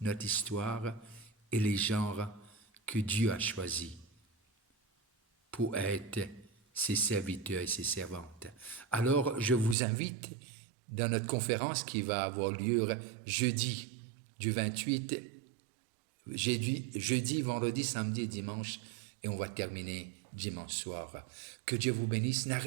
notre histoire et les gens que Dieu a choisis pour être ses serviteurs et ses servantes. Alors, je vous invite dans notre conférence qui va avoir lieu jeudi du 28, jeudi, vendredi, samedi et dimanche, et on va terminer dimanche soir. Que Dieu vous bénisse.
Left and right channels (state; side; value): drops out; left; at 9.8 s